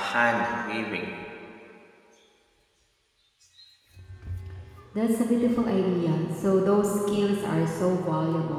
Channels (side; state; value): both; identical; correlation 1.00